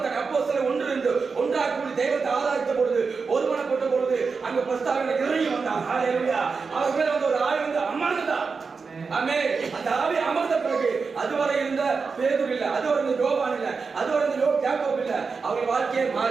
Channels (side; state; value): left; quieter; 4.9 dB